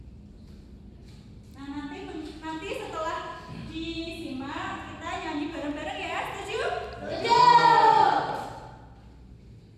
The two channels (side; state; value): both; identical; correlation 1.00